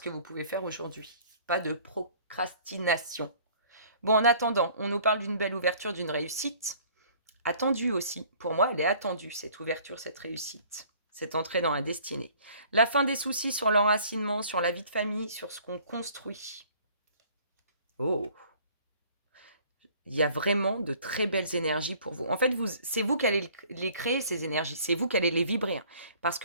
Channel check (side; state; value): both; inverted; correlation -0.54